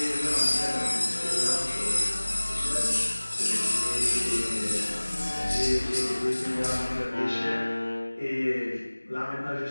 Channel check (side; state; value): both; inverted; correlation -1.00